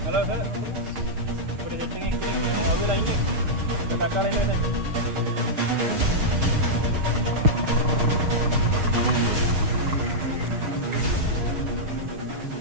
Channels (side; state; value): left; late; 6.5 ms